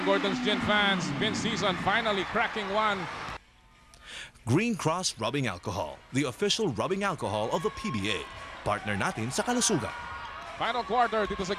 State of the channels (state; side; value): identical; both; correlation 1.00